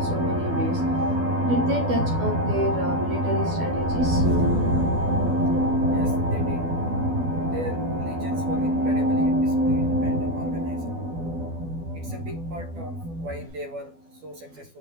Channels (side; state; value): left; late; 12 ms